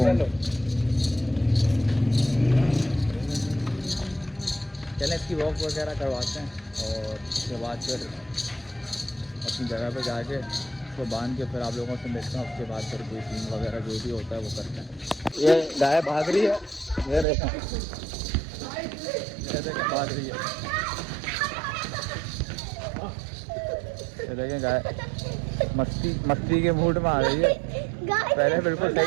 चलें इसकी वॉक वगैरह करवाते हैं, और उसके बाद फिर अपनी जगह पे जाके उसको बांध के फिर आप लोगों से मिलते हैं। उसके बाद फिर कोई सीन वगैरह जो भी होता है वो करते हैं। ये गाय भाग रही है, ये देखें भाग रही है, ये देखें गाय मस्ती के मूड में आ रही है। पहले बिल्कुल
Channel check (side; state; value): left; drops out; at 17.2 s